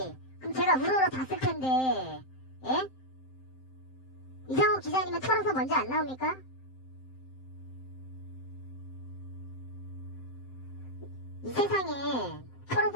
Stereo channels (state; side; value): late; right; 7.7 ms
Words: 그럼 제가 우러러 봤을 텐데. 예? 이상호 기자님은 털어서 먼저 안 나옵니까? 이 세상에